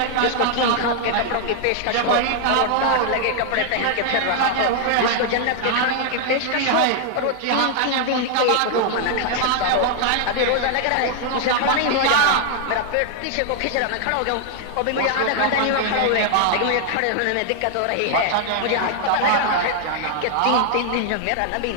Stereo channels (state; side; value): different; both; correlation 0.00